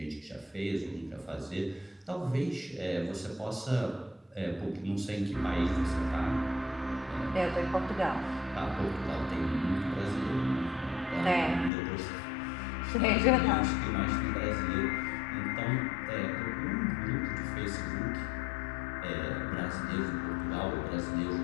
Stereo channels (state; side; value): drops out; right; at 11.7 s